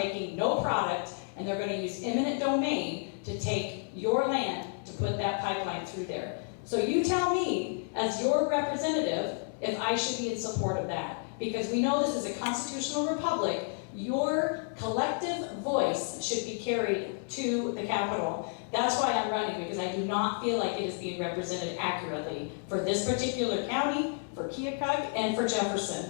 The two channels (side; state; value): right; silent; 57 dB below the other